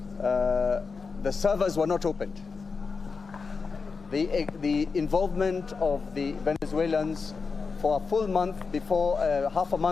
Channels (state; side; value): quieter; right; 4.8 dB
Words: the servers were not opened. The involvement of the Venezuelans for a full month before, half a